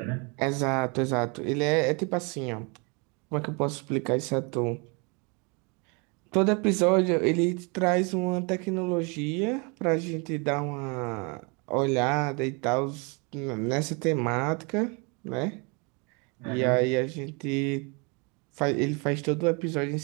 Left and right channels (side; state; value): left; quieter; 31.8 dB